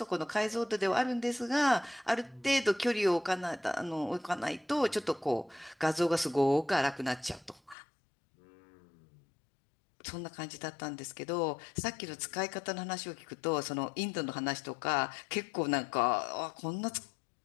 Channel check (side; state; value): right; drops out; at 7.8 s